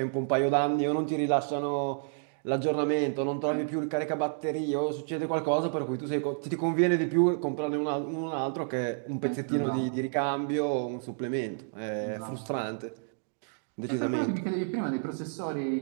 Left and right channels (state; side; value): silent; left; digital silence